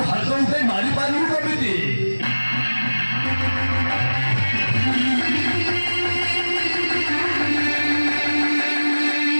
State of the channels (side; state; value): both; inverted; correlation -1.00